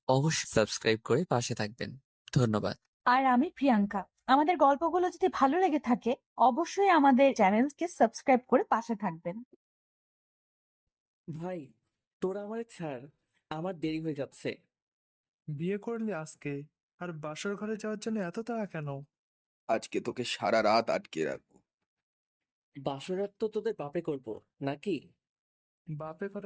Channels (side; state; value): both; identical; correlation 1.00